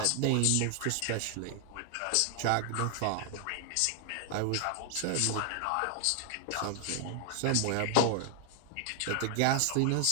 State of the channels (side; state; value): both; different; correlation 0.00